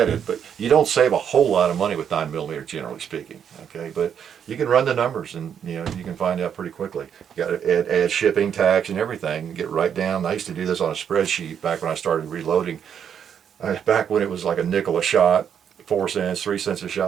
it, but you don't save a whole lot of money with 9mm, generally speaking. Okay, but you can run the numbers, and you know, you can find out pretty quickly. You got to add shipping, tax, and everything, and get right down. I used to do this on a spreadsheet back when I started reloading. Back when it was like a nickel a shot, 4 cents, 3 cents a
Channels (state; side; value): quieter; left; 8.2 dB